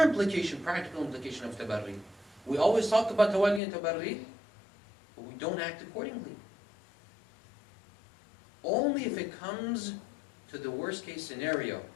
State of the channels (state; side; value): drops out; right; at 3.6 s